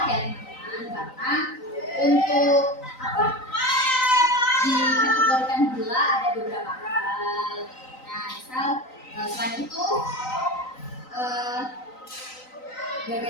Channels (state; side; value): late; right; 3.9 ms